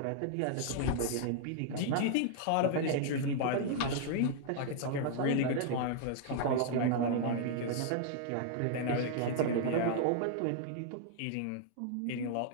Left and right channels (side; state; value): both; different; correlation 0.00